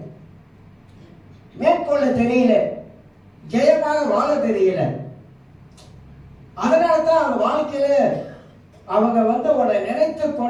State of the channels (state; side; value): identical; both; correlation 1.00